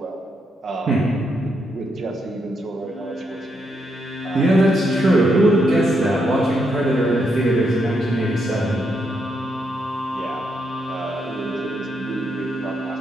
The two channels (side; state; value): both; normal; correlation 0.79